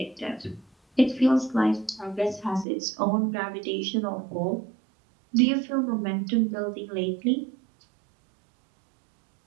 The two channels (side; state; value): left; drops out; at 2.7 s